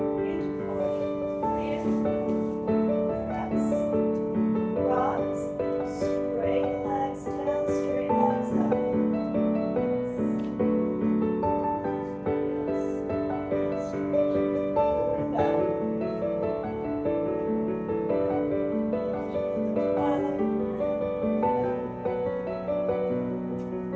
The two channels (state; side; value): identical; both; correlation 1.00